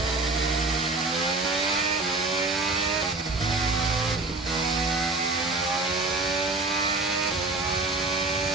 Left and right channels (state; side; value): quieter; left; 3.3 dB